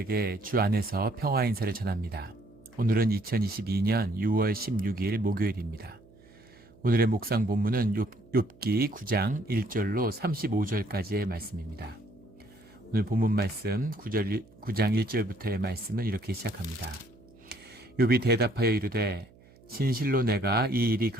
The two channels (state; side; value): noise; right; hum, 26 dB below the sound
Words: 주 안에서 평화 인사를 전합니다. 오늘은 2022년 6월 16일 목요일입니다. 오늘의 묵상 본문은 욥기 9장 1절로 35절까지의 말씀입니다. 오늘 본문 말씀 9장 1절부터의 말씀은 이렇게 시작합니다. 욥이 대답하여 이르되 진실로 내가 이 일이